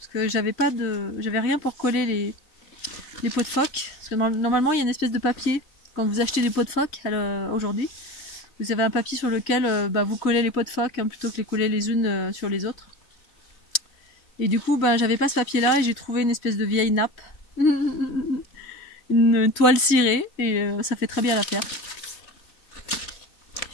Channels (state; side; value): late; right; 3.1 ms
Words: que j'avais rien pour coller les pots de phoque. Parce que normalement, il y a une espèce de papier quand vous achetez des pots de phoque aujourd'hui. Vous avez un papier sur lequel vous collez les pots de phoque hein, plutôt que les coller les unes sur les autres. Et du coup, j'avais pas ce papier-là et j'ai trouvé une espèce de vieille nappe. Une toile cirée et ça fait très bien l'affaire.